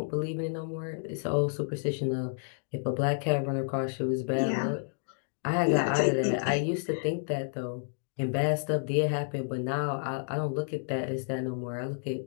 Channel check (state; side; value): silent; right; digital silence